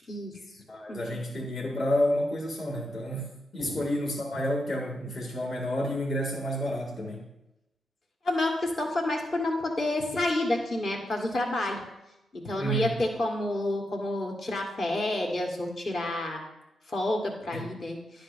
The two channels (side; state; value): both; normal; correlation 0.84